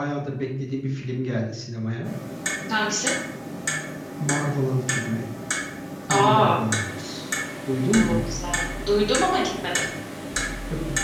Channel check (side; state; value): both; identical; correlation 1.00